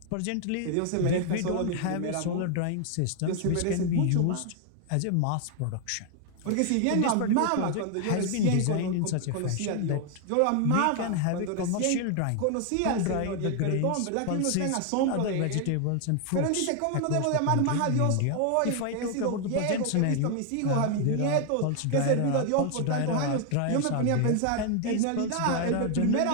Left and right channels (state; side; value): different; both; correlation 0.00